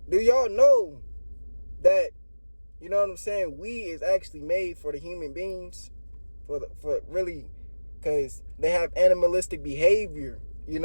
Do y'all know that, you know what I'm saying, we is actually made for the human beings? For really, because they have animalistic behavior. You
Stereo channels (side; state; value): both; inverted; correlation -1.00